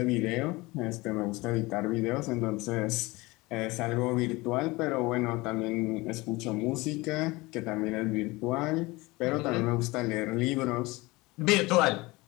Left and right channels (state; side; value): quieter; right; 22.4 dB